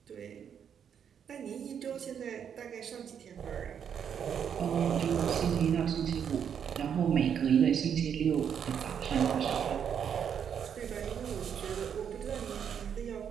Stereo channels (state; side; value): quieter; left; 8.0 dB